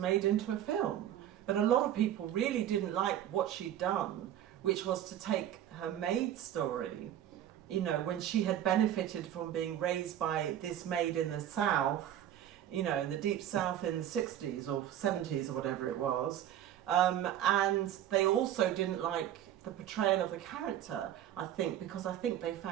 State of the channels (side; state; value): left; quieter; 11.2 dB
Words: into a film. But a lot of people really didn't like what she'd done, which was to take her maid story, when she had benefited from being raised by this maid in the South, in the deep South in the 60s or 70s or whatever it was. And they also didn't like the portrayal of the character, I think, because I think they